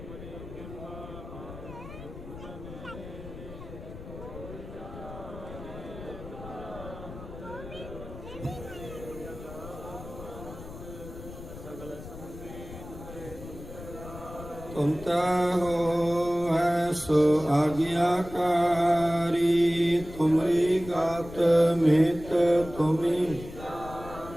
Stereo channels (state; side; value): noise; left; rumble, 13 dB below the sound